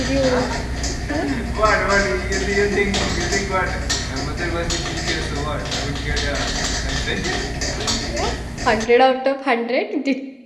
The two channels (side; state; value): both; identical; correlation 1.00